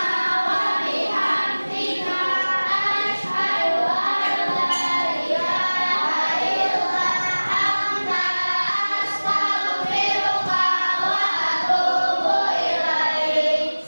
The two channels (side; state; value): both; inverted; correlation -1.00